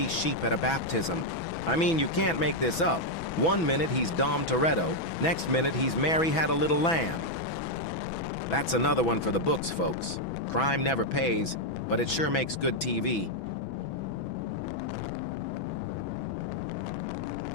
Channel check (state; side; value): late; right; 6.1 ms